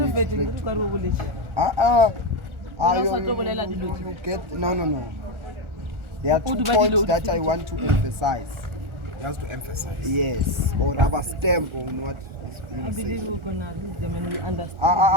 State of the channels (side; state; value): left; late; 1.4 ms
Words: you get no. There are 2 points that I want to emphasize. Just to emphasize. Yes, or rubber stamp on what is being said.